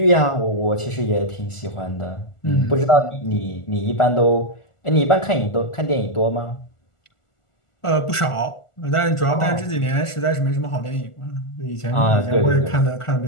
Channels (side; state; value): right; late; 1.4 ms